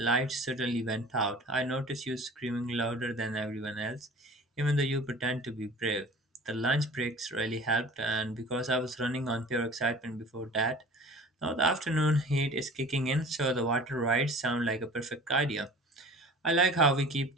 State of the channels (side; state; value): both; normal; correlation 0.43